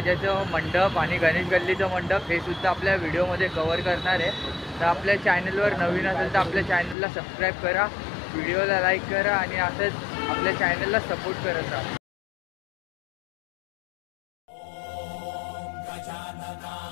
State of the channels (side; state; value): right; drops out; at 7.0 s